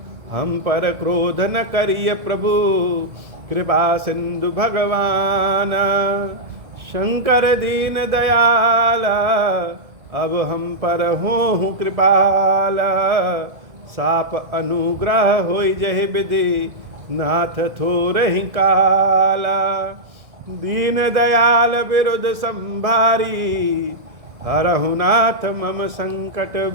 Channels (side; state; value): left; late; 1.7 ms